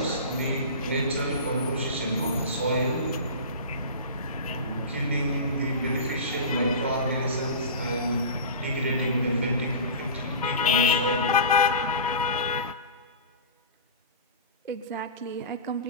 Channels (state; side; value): inverted; both; correlation -0.31